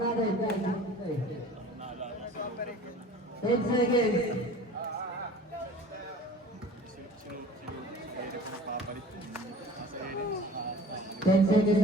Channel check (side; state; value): both; normal; correlation 0.44